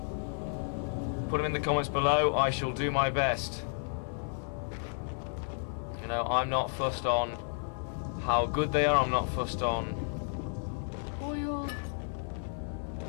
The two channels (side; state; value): right; silent; 56 dB below the other